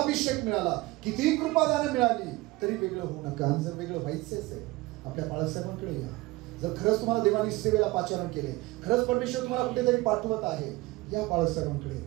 मिळाला, किती कृपादानं मिळाली, तरी वेगळं होऊ नका. आणि जर वेगळं व्हायचंच आहे, आपल्या बाळासाहेबांकडे या. जर खरंच तुम्हाला देवानी सेवेला पाचारण केले, खरंच परमेश्वर तुम्हाला कुठेतरी पाठवत आहे, या बाळासाहेबांकडे.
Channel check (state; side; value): quieter; left; 20.8 dB